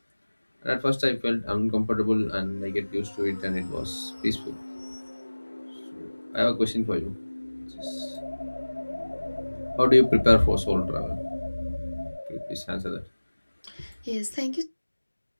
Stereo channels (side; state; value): both; inverted; correlation -1.00